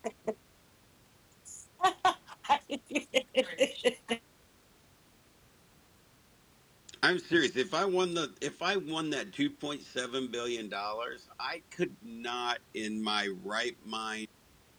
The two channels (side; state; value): both; identical; correlation 1.00